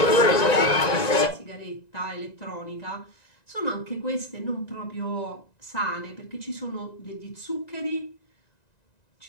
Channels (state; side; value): late; right; 1.9 ms